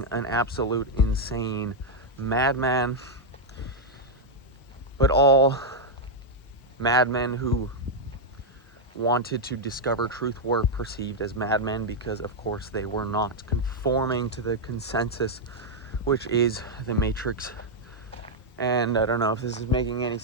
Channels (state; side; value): normal; both; correlation -0.01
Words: an absolute insane madman. But all madmen who wanted to discover truth were perceived as madmen because, of course, they were not conforming to the consensus, which is the Matrix. And I don't know if this is making any